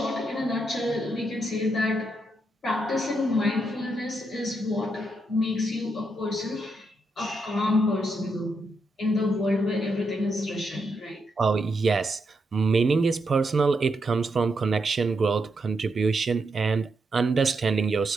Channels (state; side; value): normal; both; correlation 0.81